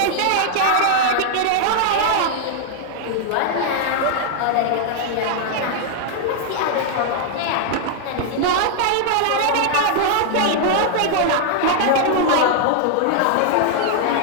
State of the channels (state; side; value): different; both; correlation 0.00